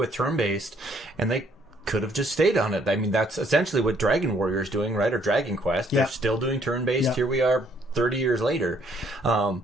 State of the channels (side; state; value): both; normal; correlation 0.66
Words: turn-based, and they could have just stayed on it. I mean, that's essentially what Dragon Warrior is doing, right? Or Dragon Quest. They're still doing turn-based. Here we are 30 years later.